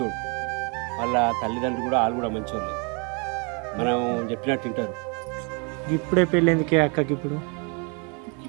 వాళ్ళ తల్లిదండ్రులు కూడా వాళ్ళు కూడా మంచోళ్ళు. మనం చెప్పినట్టు తింటారు. ఇప్పుడే పెళ్ళి ఎందుకే అక్కకి?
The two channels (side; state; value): left; quieter; 34.4 dB